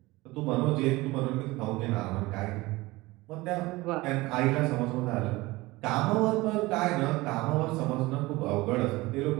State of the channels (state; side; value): quieter; left; 20.8 dB